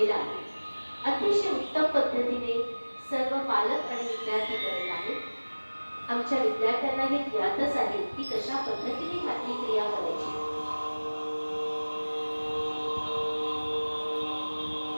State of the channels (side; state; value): both; inverted; correlation -1.00